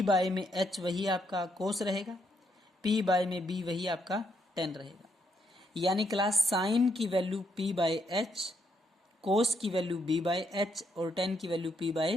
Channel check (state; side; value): normal; both; correlation 0.76